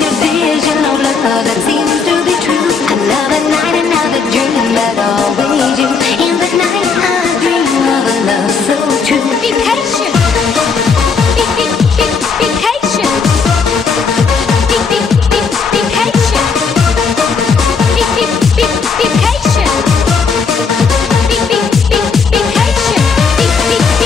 vision of love that seems to be true? Another night, another dream, but always you. In the night I dream of a love so true. Be patient. Be patient. Be patient. Be patient.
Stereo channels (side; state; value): right; quieter; 5.3 dB